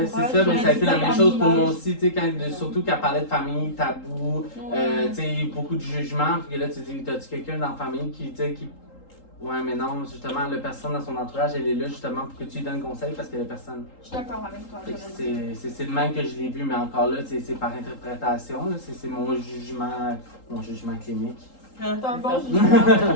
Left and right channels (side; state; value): right; late; 3.8 ms